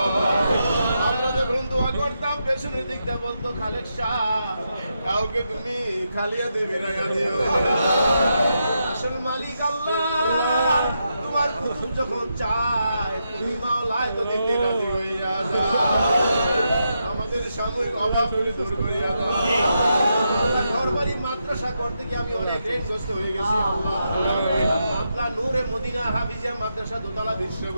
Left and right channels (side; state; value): both; inverted; correlation -0.84